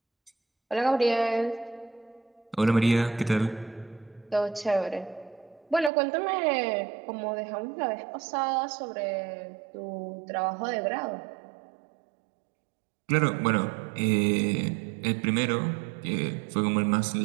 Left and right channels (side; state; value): left; drops out; at 5.9 s